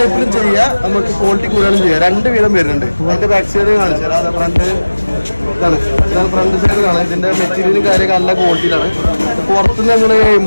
ചെയ്യാം, നമുക്ക് ക്വാളിറ്റി കൂടുതലും ചെയ്യാം. രണ്ട് വീതം വരുന്നുണ്ട്. അതിന്റെ ബാക്ക് സൈഡ് കാണിച്ചു തരാം. അത് ഇതാണ് ഫ്രണ്ട് സൈഡ് കാണാം. ഇതിന്റെ മെറ്റീരിയലും കാര്യമൊക്കെ നല്ല ക്വാളിറ്റിയിലാണ്. പുറത്തുനിന്ന് നമ്മൾ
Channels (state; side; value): inverted; both; correlation -1.00